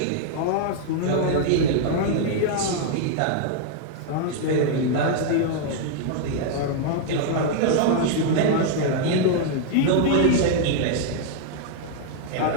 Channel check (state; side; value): different; both; correlation -0.01